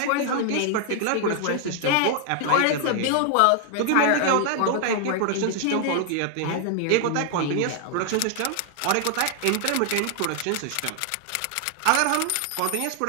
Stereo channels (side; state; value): both; different; correlation 0.00